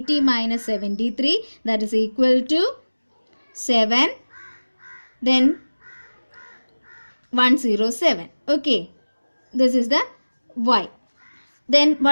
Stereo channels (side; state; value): both; inverted; correlation -1.00